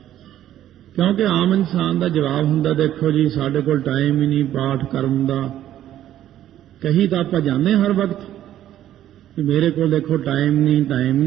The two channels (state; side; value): quieter; left; 12.1 dB